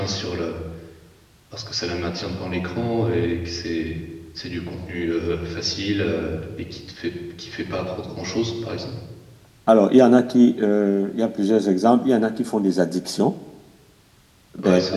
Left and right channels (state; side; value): identical; both; correlation 1.00